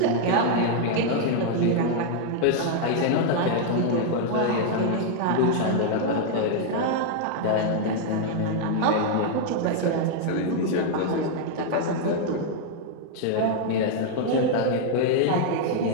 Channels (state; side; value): different; both; correlation 0.00